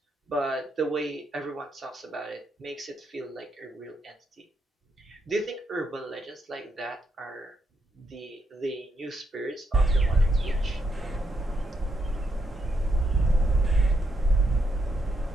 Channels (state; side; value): normal; both; correlation 0.79